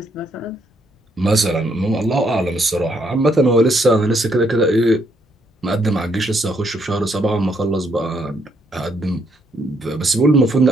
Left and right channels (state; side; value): normal; both; correlation 0.73